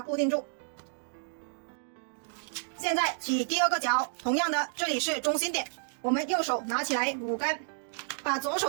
固定住。现在起第2个角，同样的这里是中心点，我们右手拿起来5根，把左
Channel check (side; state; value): left; silent; digital silence